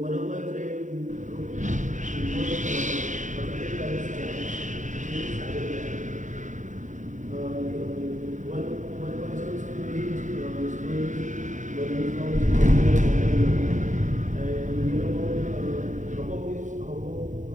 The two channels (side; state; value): left; late; 0.36 ms